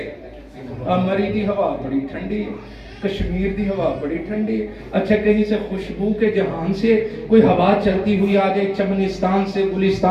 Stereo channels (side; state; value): both; identical; correlation 1.00